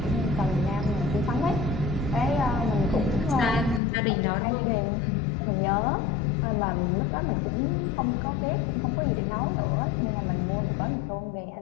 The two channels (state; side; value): drops out; right; at 3.8 s